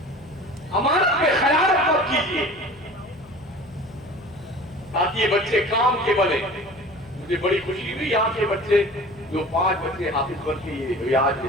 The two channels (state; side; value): noise; left; hum, 24 dB below the sound